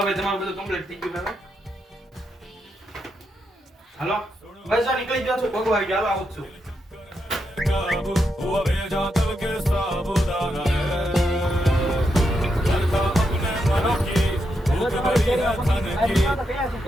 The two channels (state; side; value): normal; both; correlation 0.83